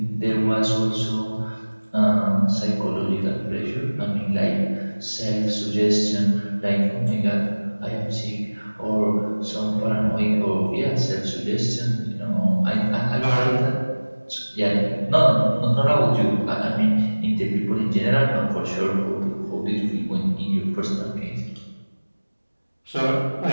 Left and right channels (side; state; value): both; inverted; correlation -1.00